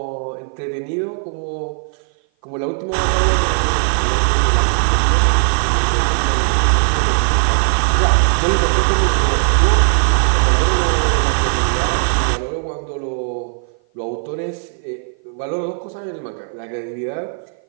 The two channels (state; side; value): silent; left; 55 dB below the other